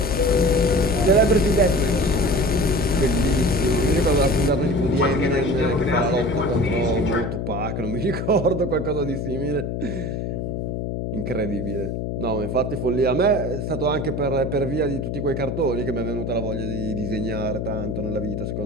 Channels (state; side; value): noise; left; hum, 3 dB below the sound